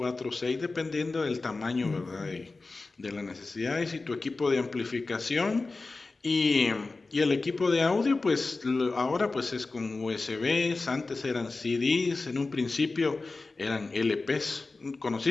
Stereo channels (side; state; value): right; quieter; 3.6 dB